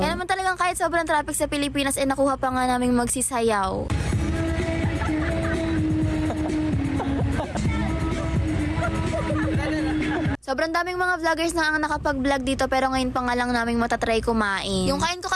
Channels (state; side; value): identical; both; correlation 1.00